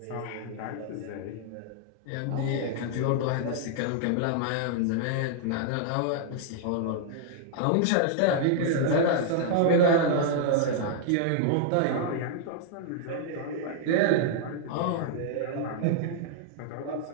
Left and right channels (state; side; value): different; both; correlation -0.01